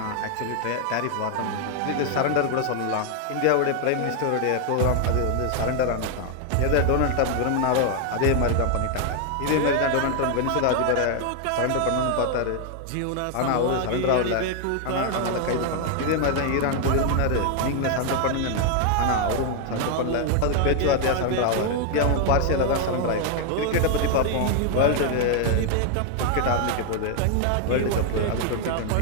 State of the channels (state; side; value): different; both; correlation 0.00